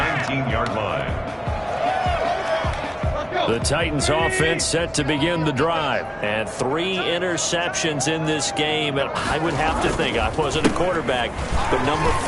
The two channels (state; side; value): identical; both; correlation 1.00